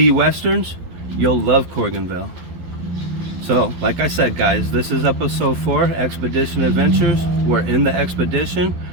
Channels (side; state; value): left; late; 12 ms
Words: you'll love Corriganville. So, like I said, guys, this is episode 4, Expedition Adventures. We're in the expedition.